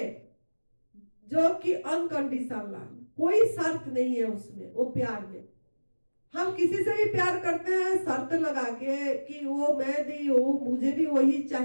जो कि अनकंडीशनल, कोई शर्त नहीं है उसमें, वो प्यार में। हम किसी से भी प्यार करते हैं शर्त लगा के कि वो मैं दी, वो मुझे भी वही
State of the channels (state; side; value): inverted; both; correlation -1.00